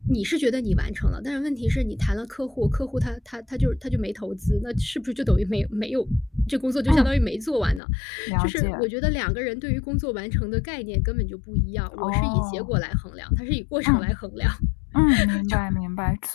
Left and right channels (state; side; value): drops out; right; at 7.8 s